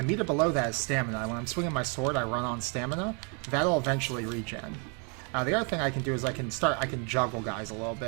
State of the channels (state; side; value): quieter; left; 36.3 dB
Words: meter below that is stamina. When I'm swinging my sword, I run on stamina. That'll eventually regen. The other thing I can do is I can juggle guys a little